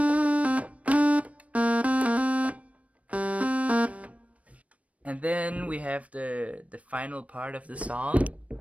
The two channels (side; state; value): left; late; 0.066 ms